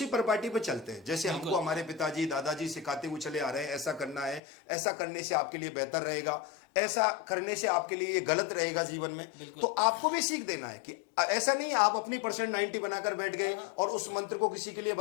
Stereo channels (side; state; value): right; drops out; at 4.4 s